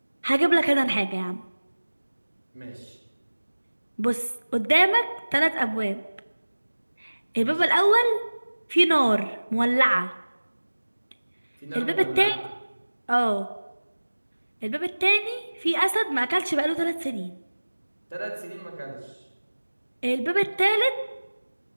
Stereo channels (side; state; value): both; inverted; correlation -1.00